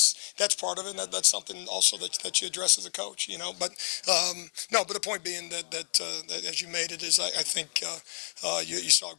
part of it. And that's something also that you address as a coach. But the point being that as you made it is, I think you saw a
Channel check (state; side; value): silent; right; digital silence